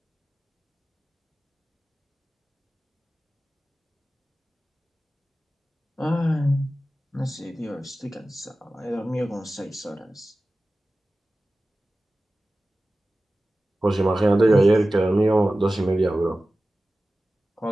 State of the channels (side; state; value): both; normal; correlation 0.95